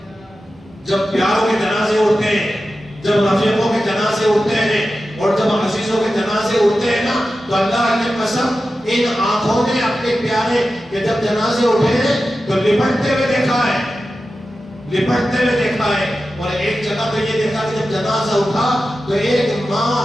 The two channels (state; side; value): normal; both; correlation 0.92